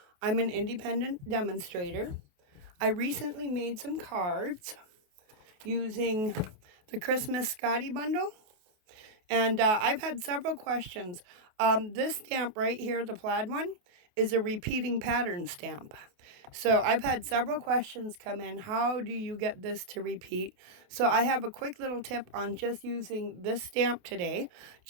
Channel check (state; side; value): late; left; 28 ms